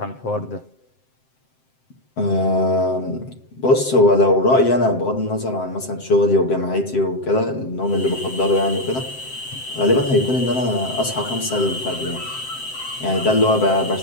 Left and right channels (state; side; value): late; right; 7.7 ms